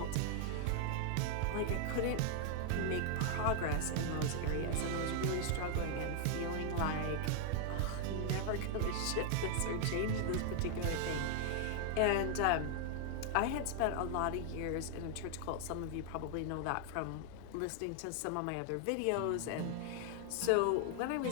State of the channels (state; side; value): different; both; correlation 0.00